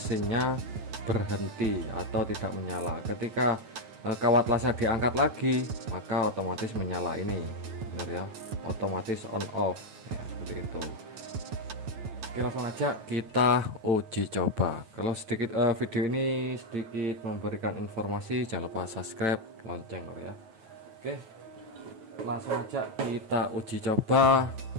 berhenti atau tidak menyala. Ketika kawat lasnya diangkat lagi, maka otomatis menyala ini, benar ya, otomatis on off ya, seperti itu. Oke, langsung aja kita uji coba. Kalau sedikit video ini sedikit memberikan informasi, jangan lupa subscribe, lonceng ya. Oke, langsung aja kita uji coba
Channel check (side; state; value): left; late; 9.1 ms